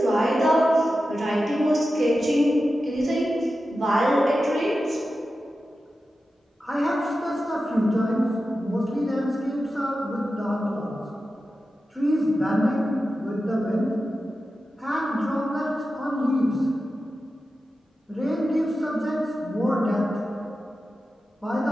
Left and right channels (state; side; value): normal; both; correlation 0.92